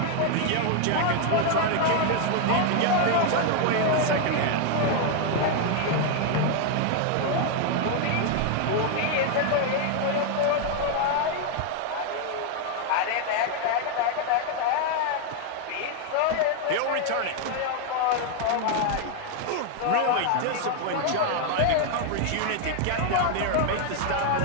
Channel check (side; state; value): both; different; correlation 0.00